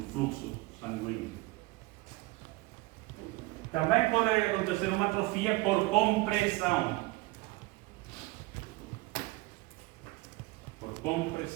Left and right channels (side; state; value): left; quieter; 21.8 dB